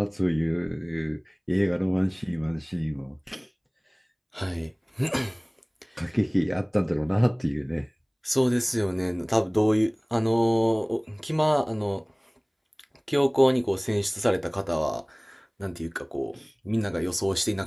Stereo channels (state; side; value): identical; both; correlation 1.00